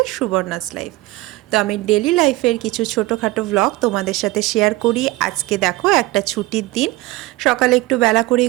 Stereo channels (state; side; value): quieter; left; 19.3 dB